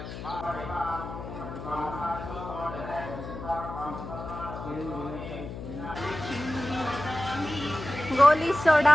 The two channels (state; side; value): noise; left; hum, 9 dB below the sound